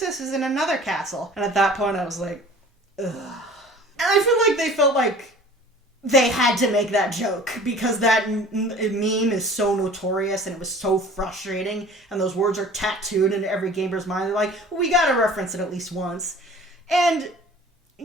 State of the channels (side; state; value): both; normal; correlation 0.45